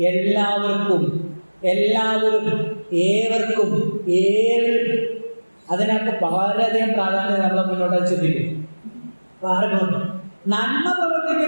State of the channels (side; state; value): both; inverted; correlation -1.00